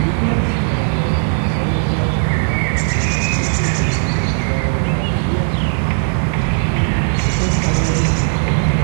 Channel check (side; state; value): left; silent; digital silence